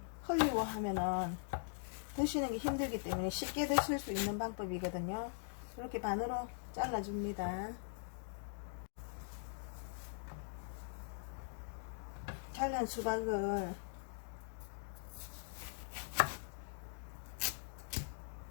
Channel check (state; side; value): silent; right; digital silence